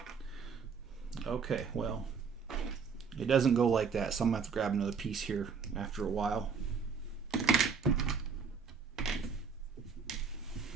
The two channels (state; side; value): quieter; left; 5.8 dB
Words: Okay, well, it doesn't go like that, so I'm going to have to grab another piece here after a while.